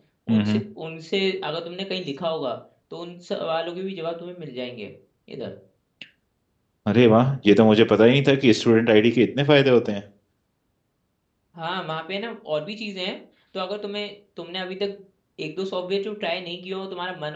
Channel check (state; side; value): identical; both; correlation 1.00